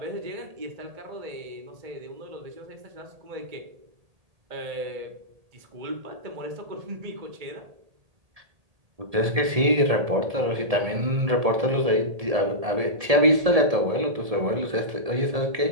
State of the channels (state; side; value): late; left; 1.7 ms